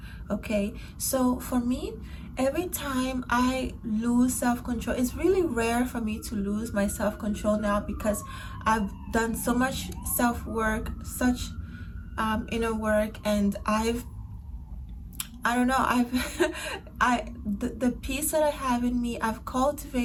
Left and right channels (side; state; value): both; identical; correlation 1.00